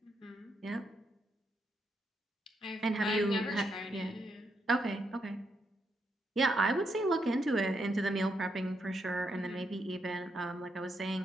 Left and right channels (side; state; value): both; normal; correlation 0.80